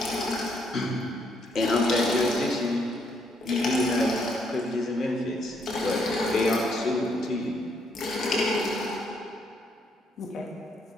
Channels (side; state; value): both; normal; correlation 0.72